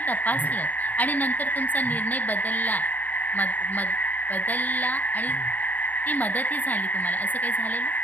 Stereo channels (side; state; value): right; late; 0.083 ms